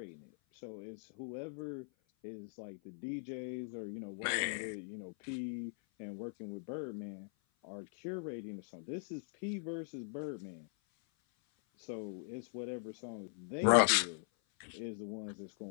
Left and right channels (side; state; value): right; silent; 51 dB below the other